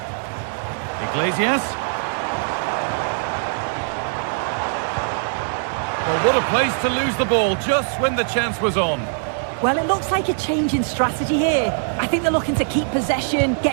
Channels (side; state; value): left; silent; digital silence